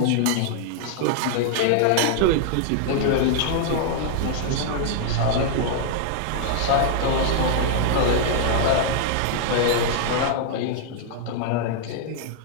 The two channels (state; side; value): different; both; correlation -0.01